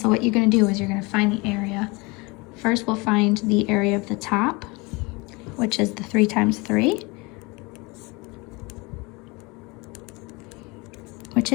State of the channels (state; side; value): quieter; right; 26.2 dB